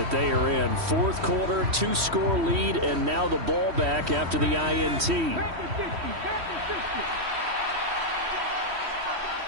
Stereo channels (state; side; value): late; left; 3.1 ms